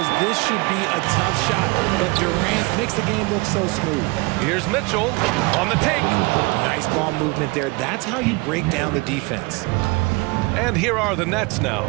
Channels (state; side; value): quieter; left; 26.2 dB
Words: this should be a tough shot, but Durant makes the game look so smooth. Here's Mitchell on the take. Nice ball movement there. That's how you break down the defense. And here are the Nets now.